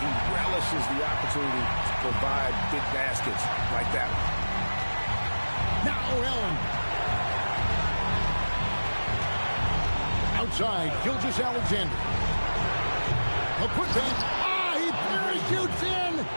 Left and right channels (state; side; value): inverted; both; correlation -1.00